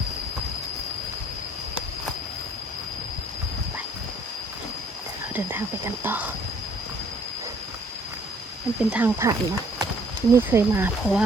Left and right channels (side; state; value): both; normal; correlation 0.61